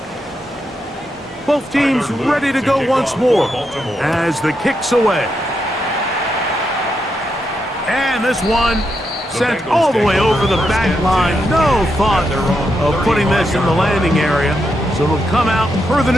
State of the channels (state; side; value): normal; both; correlation 0.83